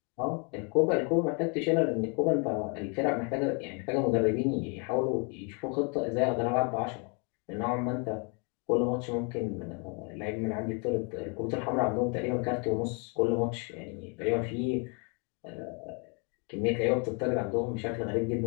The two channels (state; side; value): quieter; right; 35.6 dB